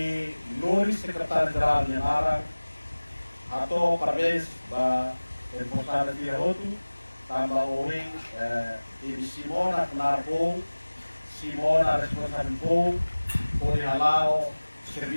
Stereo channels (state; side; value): inverted; both; correlation -1.00